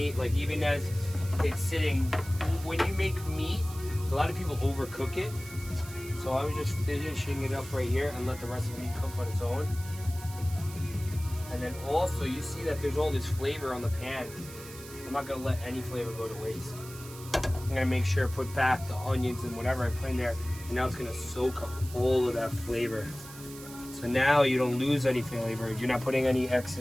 like even as it's sitting, when you make meat, a lot of people overcook it. So I was just finishing it up right here and let the rest of the meat cook on its own. And then also, you see that there's all this flavor on the pan. I'm not gonna let any flavor go to waste. I'm gonna make sure I put back the onions and whatever I put in there, and now it's gonna soak up all of that flavor. So now you don't lose any flavor. You're not putting any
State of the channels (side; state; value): right; noise; hiss, 16 dB below the sound